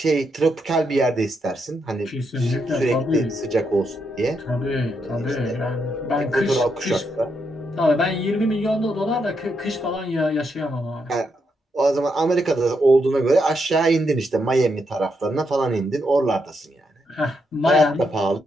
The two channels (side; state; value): both; normal; correlation 0.80